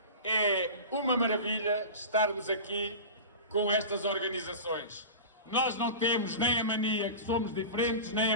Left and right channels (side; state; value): both; inverted; correlation -0.31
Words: é uma maravilha estarmos aqui com estas organizações. Nós não temos nem a mania que somos diferentes, nem